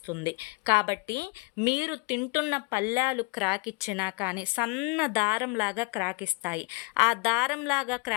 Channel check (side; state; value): right; quieter; 29.2 dB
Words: కాబట్టి మీరు తింటున్న పళ్ళాలు క్రాక్ ఇచ్చినా కానీ సన్న దారంలాగా క్రాక్ ఇస్తాయి. ఆ దారంలాగా